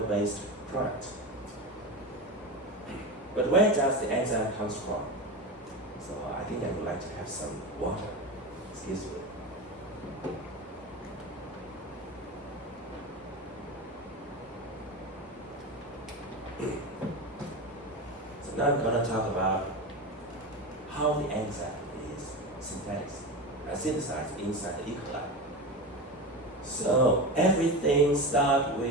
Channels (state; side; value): normal; both; correlation 0.23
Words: product. But where does the enzyme come from? So I think I would like to have some water. Excuse me. So now I'm going to talk about how the enzyme is synthesized inside the E. coli. So everything starts